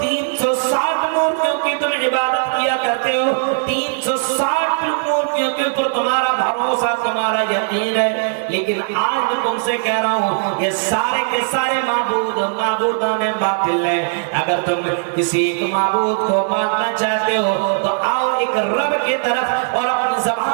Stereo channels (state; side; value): silent; left; 67 dB below the other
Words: 360 مورتیوں کی تم عبادت کیا کرتے ہو، 360 مورتیوں کے اوپر تمہارا بھروسہ، تمہارا یقین ہے، لیکن آج میں تم سے کہہ رہا ہوں یہ سارے کے سارے معبودان باطل ہیں۔ اگر تم کسی ایک معبود کو ماننا چاہتے ہو تو آؤ ایک رب کی طرف اور اپنی